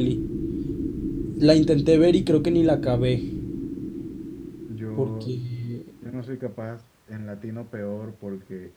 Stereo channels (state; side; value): identical; both; correlation 1.00